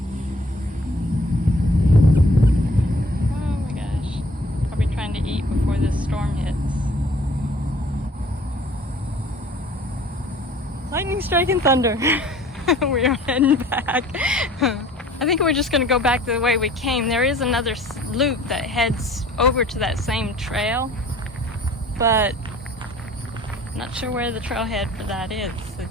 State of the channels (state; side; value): normal; both; correlation 0.52